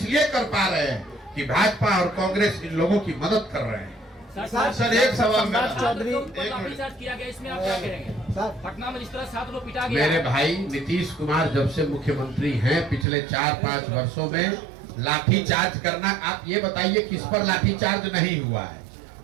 कर पा रहे हैं कि भाजपा और कांग्रेस इन लोगों की मदद कर रहे हैं। सर एक सवाल मेरा, चौधरी एक किया गया, इसमें आप क्या कहेंगे? पटना में जिस तरह 7 लोग पिटा गया। मेरे भाई नीतीश कुमार जब से मुख्यमंत्री हैं पिछले 4-5 वर्षों में लाठीचार्ज करना, आप ये बताइए किस पर लाठीचार्ज नहीं हुआ है?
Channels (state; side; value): drops out; left; at 13.1 s